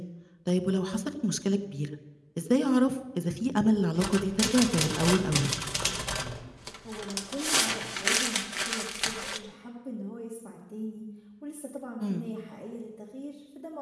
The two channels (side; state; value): both; identical; correlation 1.00